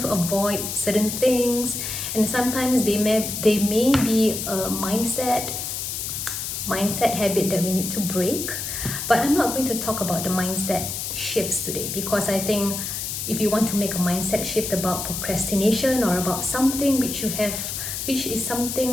to avoid certain things, and sometimes they may be a mindset habit that we need to break. But I'm not going to talk about the mindset shifts today, because I think if you want to make a mindset shift about procrastination or about something which is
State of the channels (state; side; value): noise; left; hiss, 4 dB below the sound